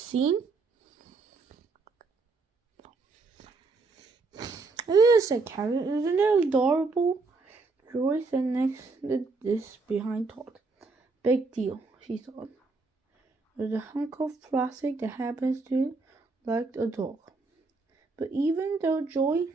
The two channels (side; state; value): left; quieter; 3.8 dB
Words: "It is," said Carrot. "Isn't it adorable?" Joy sat next to this behind Todd. "Big deal," she thought. "There's a hunk of plastic that happens to like a dog." But even though Joy